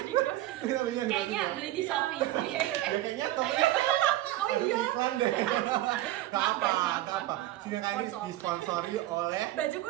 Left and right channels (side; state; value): left; quieter; 15.4 dB